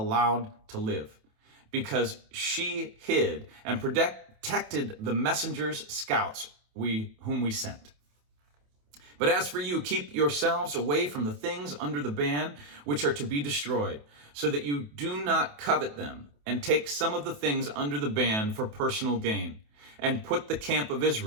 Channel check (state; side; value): late; left; 28 ms